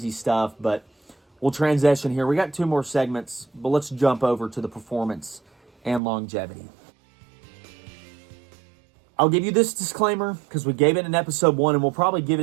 stuff, but we'll transition here. We got 2 more segments, but let's jump over to the performance and longevity. I'll give you this disclaimer because we gave it in episode 1, and we'll probably give it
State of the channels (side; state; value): left; drops out; at 6.0 s